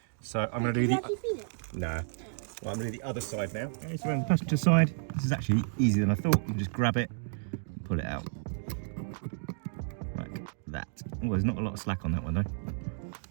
So I'm going to do the. No. Well, I'm going to do the other side now. Okay, so on the passenger side, this is actually easier than I thought. You can just grab it, and pull it out, like that. Oh, there's not a lot of slack on that one though.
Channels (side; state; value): left; silent; digital silence